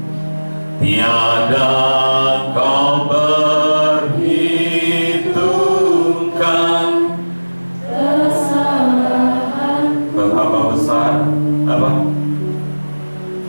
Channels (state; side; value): inverted; both; correlation -1.00